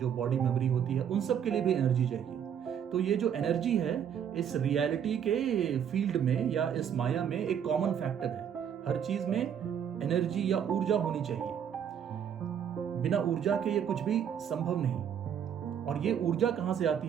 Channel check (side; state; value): left; quieter; 8.6 dB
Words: बॉडी मेमोरी होती है, उन सब के लिए भी एनर्जी चाहिए। तो ये जो एनर्जी है इस रियलिटी के फील्ड में या इस माया में एक कॉमन फैक्टर है। हर चीज में एनर्जी या ऊर्जा होनी चाहिए, बिना ऊर्जा के ये कुछ भी संभव नहीं। और ये ऊर्जा कहां से आती